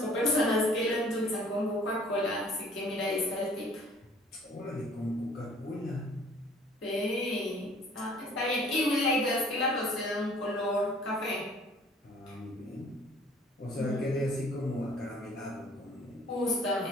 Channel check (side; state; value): both; normal; correlation 0.54